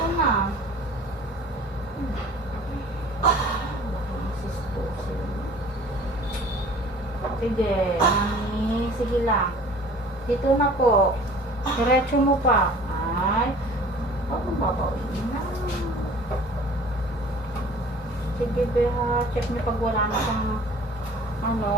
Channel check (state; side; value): normal; both; correlation 0.47